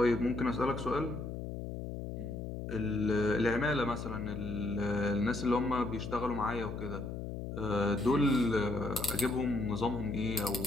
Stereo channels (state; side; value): noise; left; hum, 6 dB below the sound